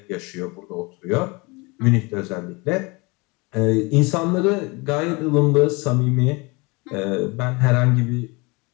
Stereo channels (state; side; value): quieter; right; 26.8 dB